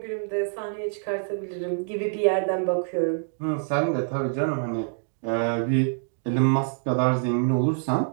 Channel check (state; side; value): silent; left; digital silence